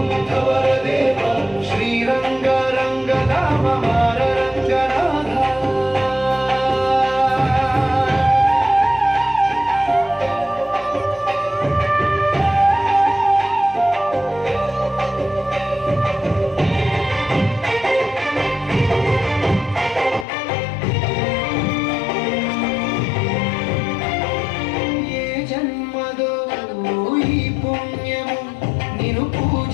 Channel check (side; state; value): right; drops out; at 20.2 s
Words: వరదేవ శ్రీరంగ రంగధామ మారరంగనాథ పుణ్యము నిన్ను